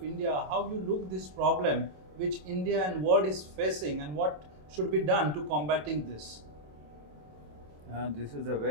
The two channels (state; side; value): late; left; 27 ms